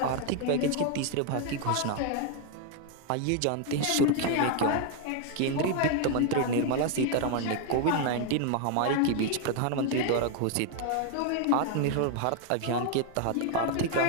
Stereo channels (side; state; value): both; different; correlation 0.01